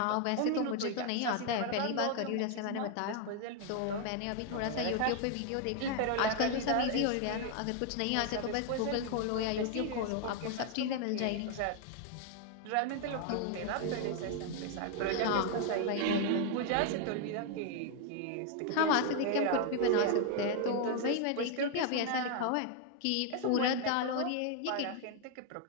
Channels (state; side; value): different; both; correlation 0.00